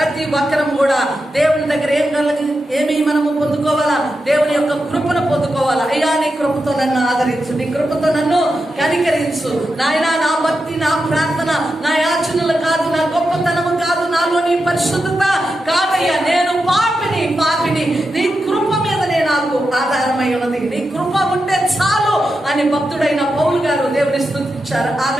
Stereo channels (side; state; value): both; normal; correlation 0.88